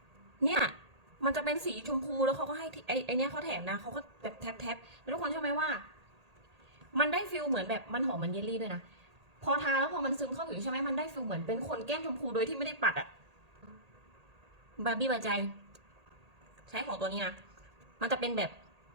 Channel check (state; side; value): late; left; 1.8 ms